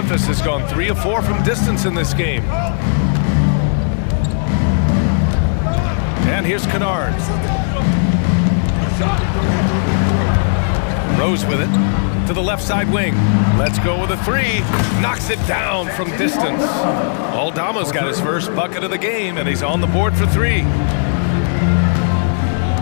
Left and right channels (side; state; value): right; silent; digital silence